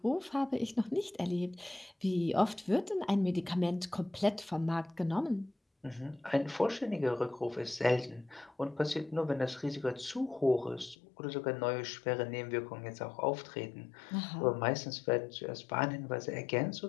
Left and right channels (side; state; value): right; drops out; at 11.0 s